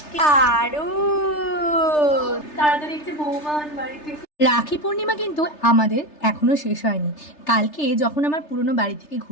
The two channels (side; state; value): right; late; 3.3 ms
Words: আরো তাড়াতাড়ি একটু বৌমা বাড়িতে। রাখি পূর্ণিমা কিন্তু আমাদের এখনো শেষ হয়নি। কালকে যখন আমার পুরনো বাড়ি থেকে